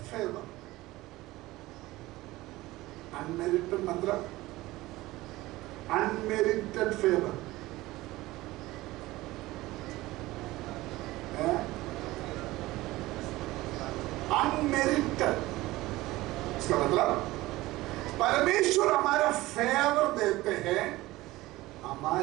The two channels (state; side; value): quieter; left; 18.5 dB